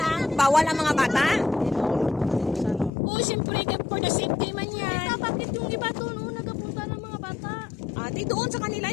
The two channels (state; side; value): drops out; right; at 2.9 s